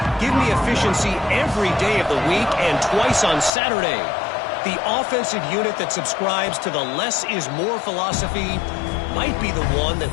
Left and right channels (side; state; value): right; drops out; at 3.5 s